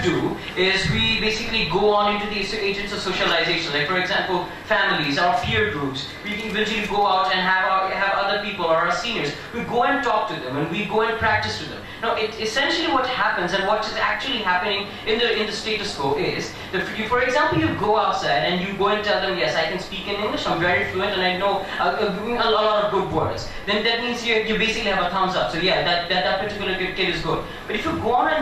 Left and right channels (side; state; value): both; identical; correlation 1.00